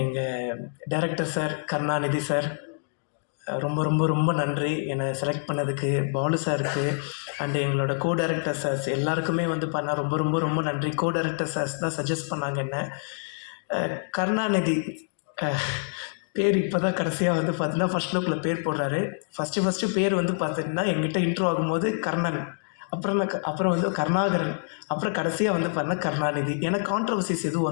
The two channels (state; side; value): silent; right; digital silence